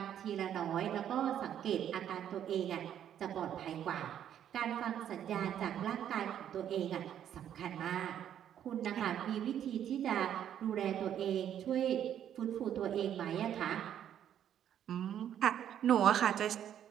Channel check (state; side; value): quieter; left; 10.0 dB